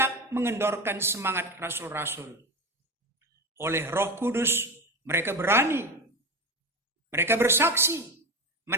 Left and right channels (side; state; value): both; normal; correlation 0.23